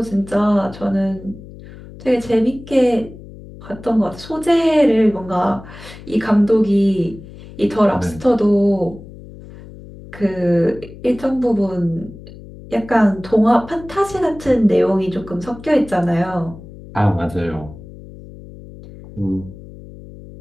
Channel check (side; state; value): left; noise; hum, 17 dB below the sound